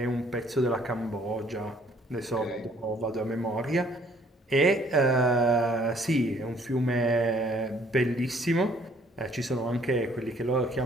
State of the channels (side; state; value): both; normal; correlation 0.61